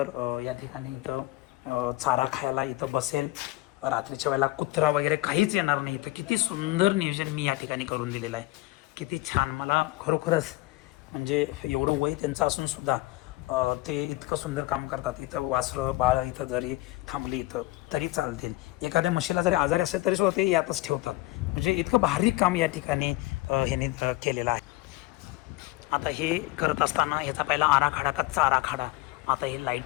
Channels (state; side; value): quieter; right; 19.4 dB